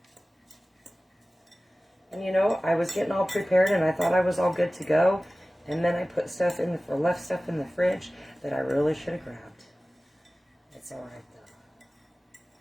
And you know, I was getting all prepared and I thought I was all good to go. And then I put stuff in the, left stuff in the fridge that I really should have grabbed. It's all right though.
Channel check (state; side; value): normal; both; correlation 0.97